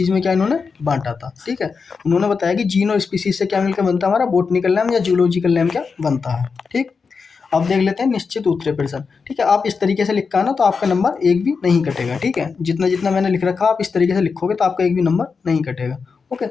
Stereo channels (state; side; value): quieter; right; 5.2 dB